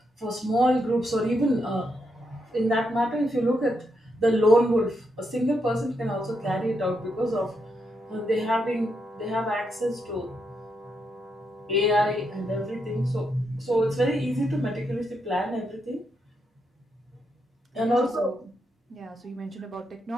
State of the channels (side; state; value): both; normal; correlation 0.81